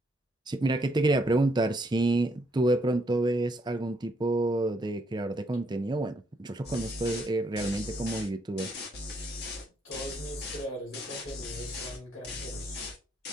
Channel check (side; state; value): both; normal; correlation 0.72